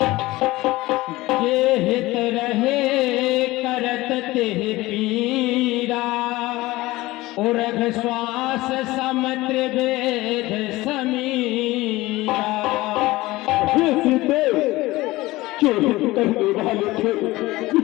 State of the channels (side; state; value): right; quieter; 19.1 dB